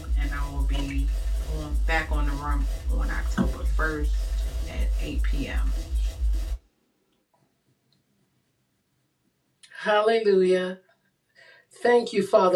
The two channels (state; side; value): identical; both; correlation 1.00